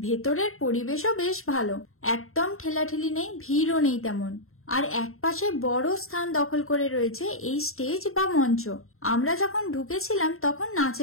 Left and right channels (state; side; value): late; right; 0.62 ms